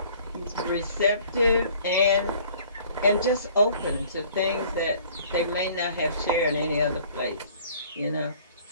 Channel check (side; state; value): both; inverted; correlation -0.54